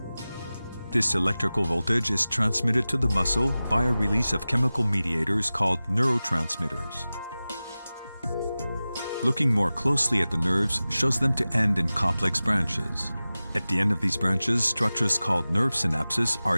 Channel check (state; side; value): inverted; both; correlation -0.97